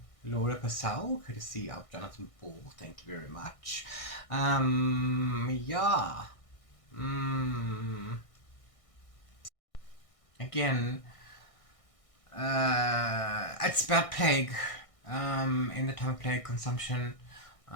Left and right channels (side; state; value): right; late; 1.6 ms